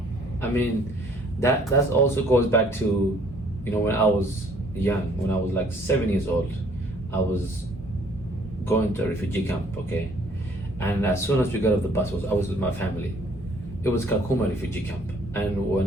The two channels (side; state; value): both; normal; correlation 0.60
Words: I mean, that also goes back to, when I was young, when I was like 7 years old, I was going to a refugee camp, okay? And as soon as we got off the bus, I was with my family. It was Kakuma refugee camp. And